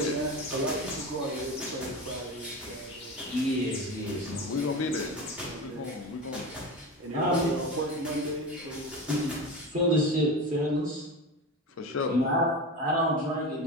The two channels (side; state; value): both; normal; correlation 0.26